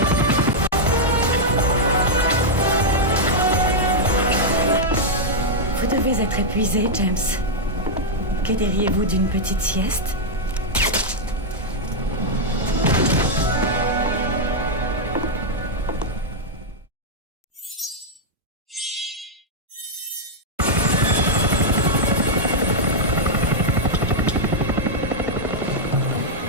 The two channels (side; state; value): both; normal; correlation -0.04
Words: Vous devez être épuisé, James. Que diriez-vous d'une petite sieste?